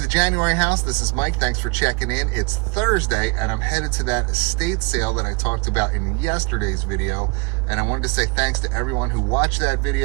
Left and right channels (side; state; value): left; quieter; 27.6 dB